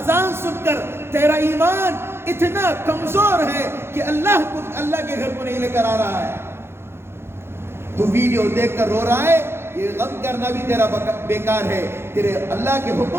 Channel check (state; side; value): late; left; 0.12 ms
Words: سن کر تیرا ایمان اتنا کمزور ہے کہ اللہ کے گھر کو نہیں لے کر آ رہا ہے. تو ویڈیو دیکھ کر رو رہا ہے, یہ غم کرنا بھی تیرا بیکار ہے. تیرے اللہ کے